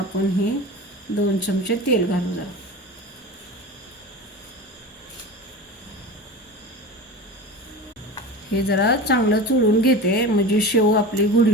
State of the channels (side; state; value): both; normal; correlation 0.30